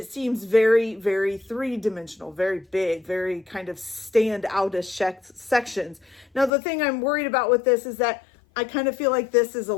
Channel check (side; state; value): right; drops out; at 6.5 s